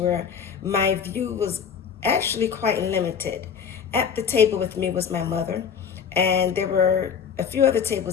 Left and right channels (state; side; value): quieter; right; 7.2 dB